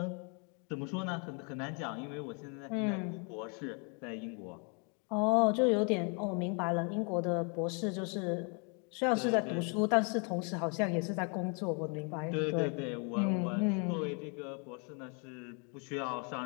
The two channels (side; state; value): right; quieter; 37.1 dB